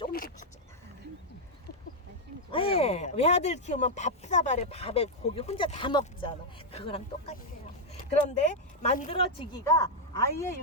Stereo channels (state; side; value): normal; both; correlation -0.01